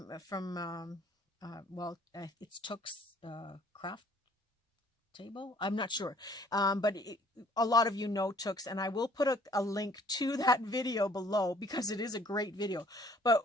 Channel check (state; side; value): normal; both; correlation 0.57